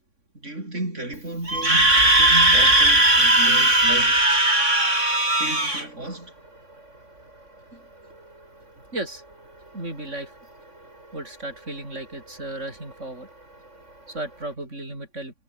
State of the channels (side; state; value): left; late; 3.6 ms